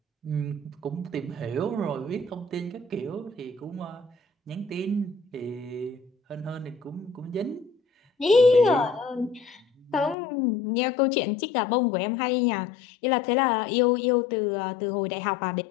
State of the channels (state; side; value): drops out; right; at 10.2 s